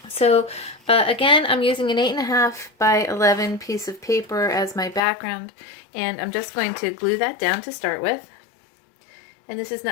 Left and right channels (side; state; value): right; drops out; at 5.0 s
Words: So again, I'm using an 8.5 by 11 piece of paper as my background, and I'm just going to glue that down to start with. And this is